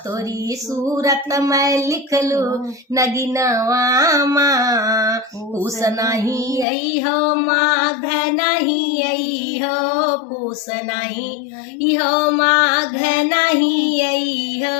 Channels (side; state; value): right; drops out; at 6.7 s